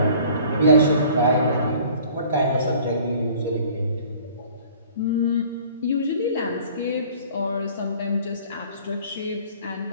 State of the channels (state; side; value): inverted; both; correlation -0.51